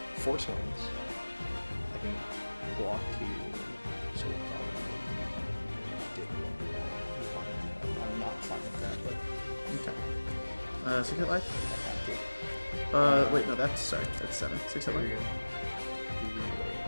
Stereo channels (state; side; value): inverted; both; correlation -1.00